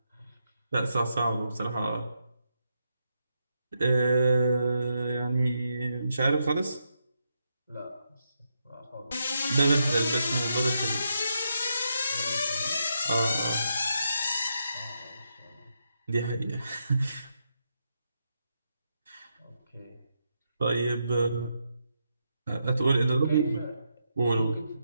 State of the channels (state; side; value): inverted; both; correlation -0.82